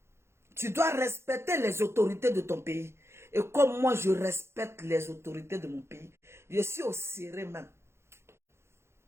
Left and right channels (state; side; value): late; left; 0.13 ms